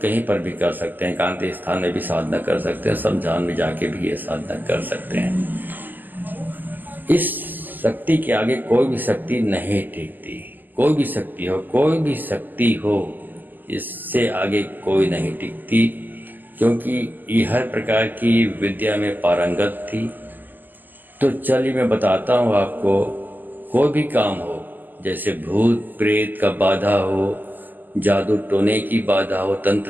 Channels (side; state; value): left; late; 0.087 ms